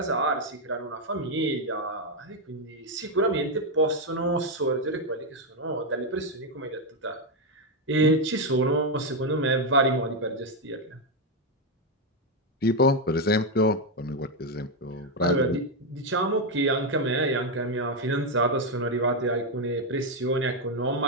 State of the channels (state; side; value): normal; both; correlation 0.04